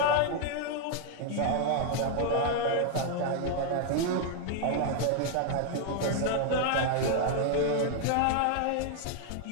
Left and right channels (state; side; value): different; both; correlation 0.00